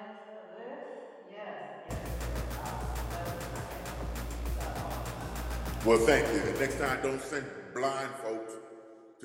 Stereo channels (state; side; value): identical; both; correlation 1.00